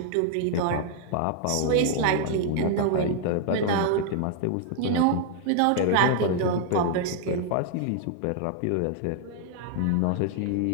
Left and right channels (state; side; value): different; both; correlation 0.00